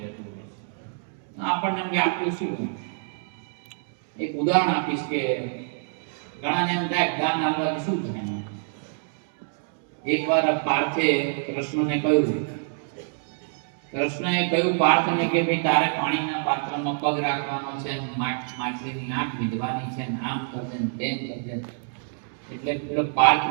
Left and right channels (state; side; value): silent; left; 61 dB below the other